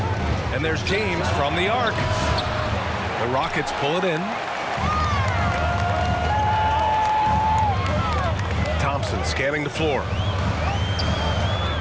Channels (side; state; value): both; identical; correlation 1.00